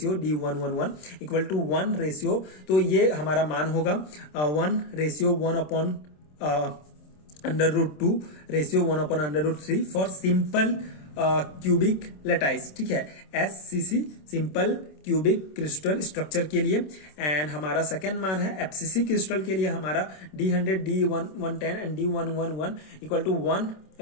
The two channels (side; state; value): right; late; 27 ms